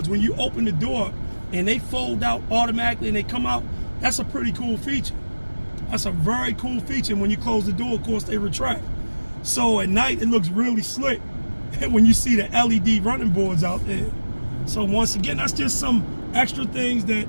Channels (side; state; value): both; inverted; correlation -1.00